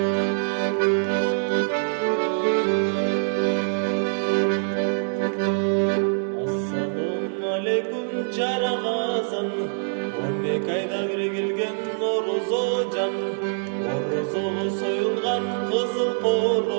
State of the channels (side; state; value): left; silent; 62 dB below the other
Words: жарагазан, 12 айда бир келген орозо жан. Орозого союлган кызыл